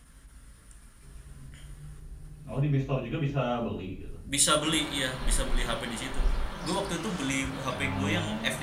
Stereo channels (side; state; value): both; identical; correlation 1.00